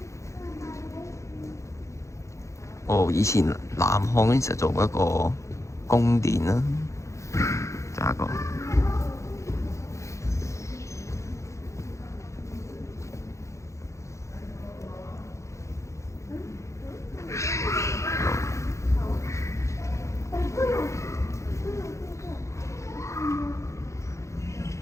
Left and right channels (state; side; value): late; right; 0.15 ms